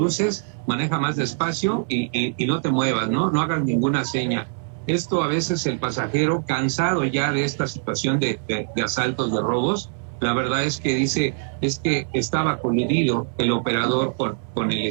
maneja más despacio y no te muevas, ¿no? No hagas ninguna seña. Esto a veces el pasajero, cansado ya de esta situación de asaltos, de robos, la verdad es que dice, es que estaba coludido el operador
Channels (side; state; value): left; silent; digital silence